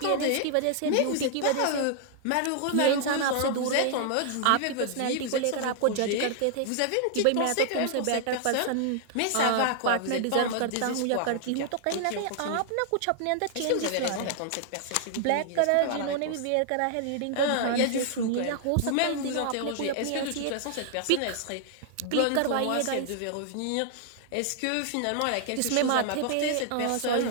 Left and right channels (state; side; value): different; both; correlation 0.00